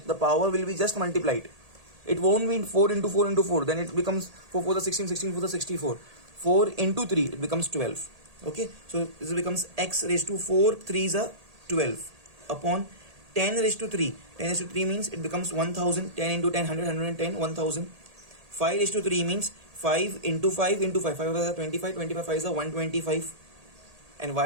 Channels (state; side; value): late; left; 1.8 ms